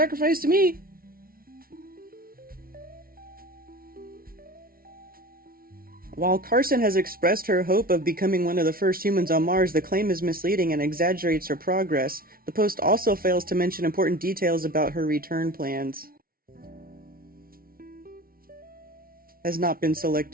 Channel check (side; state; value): left; late; 0.43 ms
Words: to me. While Carson has expressed her hope of becoming one of the first humans on Mars, the claim is misleading and exaggerates her progress. The post also fails to mention important details about her return plans. has not been